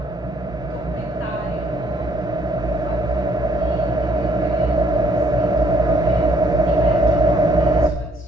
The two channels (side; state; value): both; normal; correlation 0.65